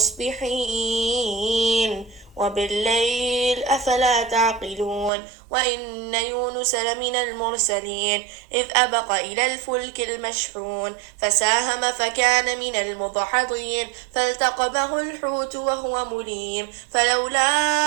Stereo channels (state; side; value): drops out; left; at 5.1 s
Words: وبالليل أفلا تعقلون وإن يونس لمن المرسلين إذ أبق إلى الفلك المشحون فساهم فكان من المضحضين فالتقمه الحوت وهو مليم فلولا